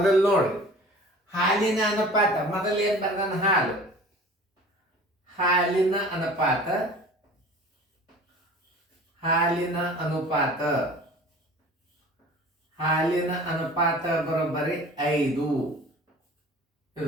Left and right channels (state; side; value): normal; both; correlation 0.43